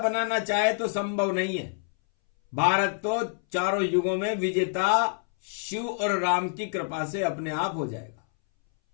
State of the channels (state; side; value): silent; right; 60 dB below the other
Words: चाहे तो संभव नहीं है। भारत तो चारों युगों में विजेता शिव और राम की कृपा से अपने आप हो जाएगा।